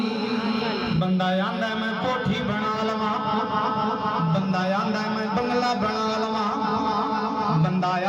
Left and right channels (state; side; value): identical; both; correlation 1.00